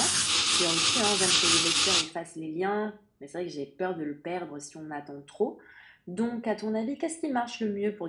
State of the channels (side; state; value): both; identical; correlation 1.00